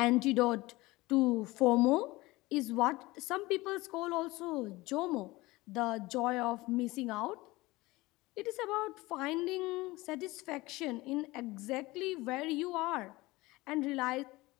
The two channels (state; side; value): quieter; right; 20.7 dB